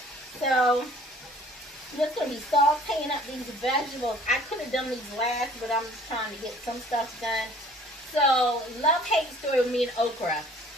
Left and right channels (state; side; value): normal; both; correlation 0.53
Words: So I'm just going to be sauteing up these vegetables. I could have done these last, but I'm just trying to get some stuff done. So, love-hate story with me and okra.